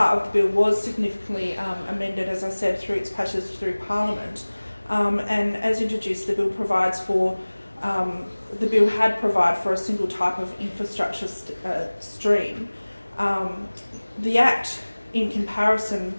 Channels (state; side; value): inverted; both; correlation -1.00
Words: of the bill was significantly amended, as I said, through its passage through Parliament. And as introduced, the bill provides for the bill had provided for a single type of infrastructure stream. The Act, in comparison,